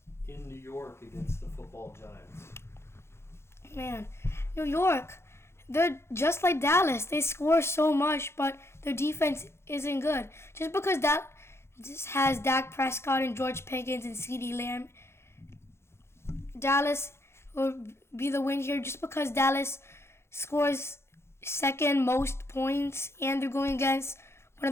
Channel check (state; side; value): late; right; 0.12 ms